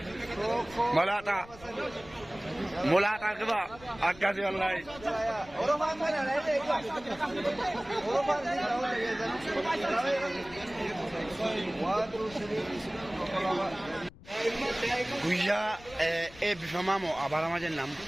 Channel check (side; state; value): left; noise; rumble, 21 dB below the sound